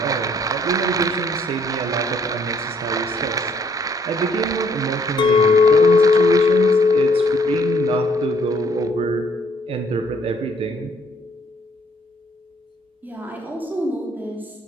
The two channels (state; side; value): normal; both; correlation 0.65